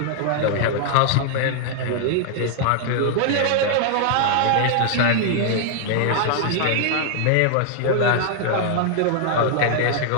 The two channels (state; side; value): different; both; correlation 0.00